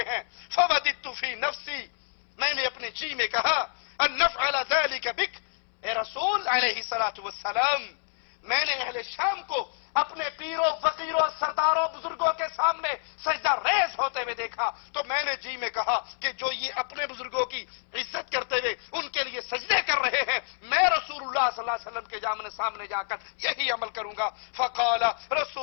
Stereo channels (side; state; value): right; silent; 59 dB below the other